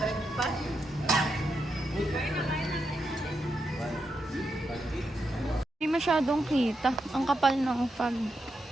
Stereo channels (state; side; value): normal; both; correlation 0.84